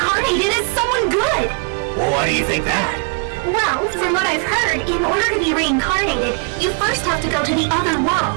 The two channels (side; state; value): left; quieter; 38.9 dB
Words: as someone good. Well, why do you think that? Well, from what I've heard, in order to be reincarnated, you first have to go to the other